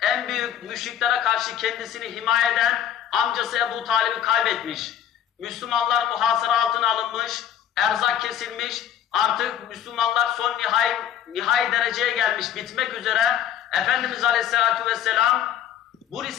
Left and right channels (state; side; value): quieter; right; 9.8 dB